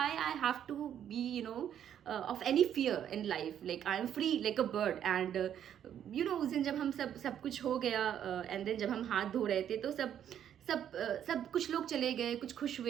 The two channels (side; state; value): left; quieter; 9.8 dB